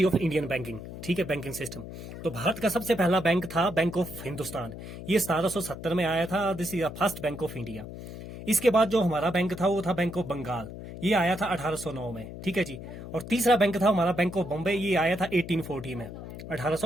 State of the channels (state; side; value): noise; left; hum, 11 dB below the sound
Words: ऑफ इंडियन बैंकिंग। ठीक है, बैंकिंग सिस्टम। तो भारत का सबसे पहला बैंक था बैंक ऑफ हिंदुस्तान। ये 1770 में आया था। This is the first bank of India. इसके बाद जो हमारा बैंक था वो था बैंक ऑफ बंगाल। ये आया था 1809 में। ठीक है जी। और तीसरा बैंक था हमारा बैंक ऑफ बॉम्बे। ये आया था 1840 में,